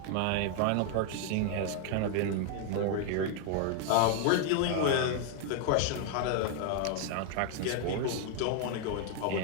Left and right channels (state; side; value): different; both; correlation 0.00